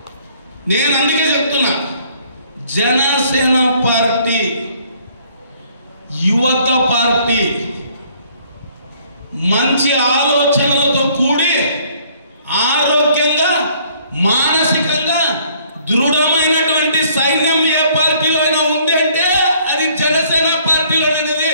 నేను అందుకే చెప్తున్నా, జనసేన పార్టీ యువత పార్టీ, మంచి ఆలోచనలతో కూడి ఆరోగ్యంగా మానసికంగా దృఢమైనటువంటి సైన్యం ఏ పార్టీలో అయినా ఉంది అంటే అది జనసేన పార్టీలోనేది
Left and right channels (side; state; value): both; inverted; correlation -0.61